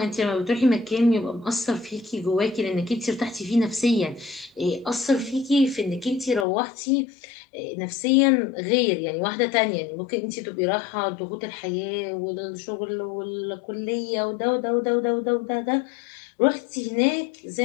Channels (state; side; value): drops out; right; at 6.5 s